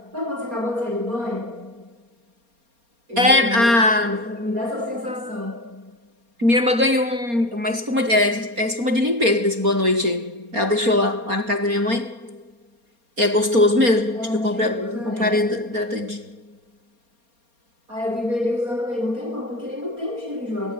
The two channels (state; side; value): late; left; 4.3 ms